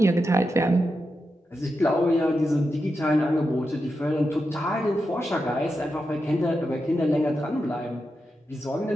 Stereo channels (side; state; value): both; normal; correlation 0.88